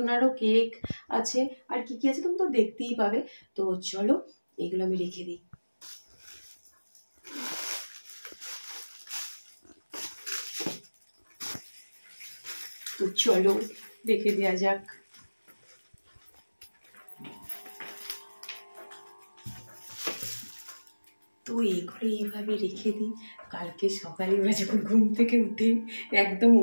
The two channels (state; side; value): inverted; both; correlation -1.00